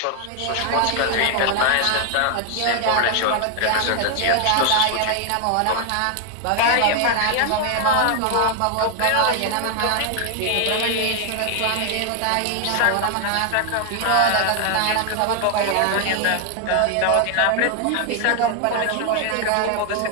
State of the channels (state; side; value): different; both; correlation 0.00